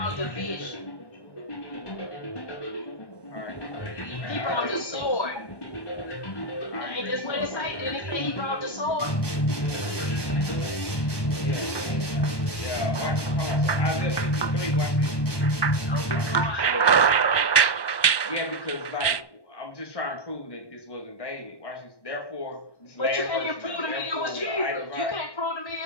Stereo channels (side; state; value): right; late; 1.1 ms